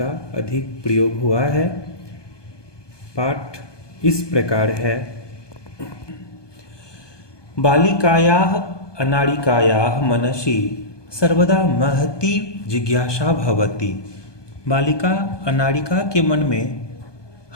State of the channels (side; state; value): right; late; 1.2 ms